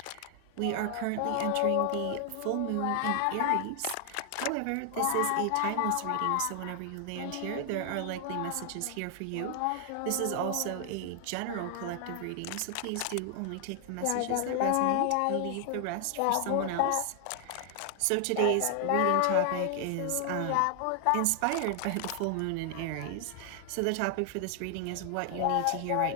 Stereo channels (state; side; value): different; both; correlation 0.00